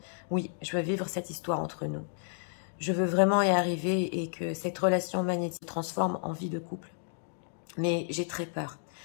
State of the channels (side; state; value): right; silent; digital silence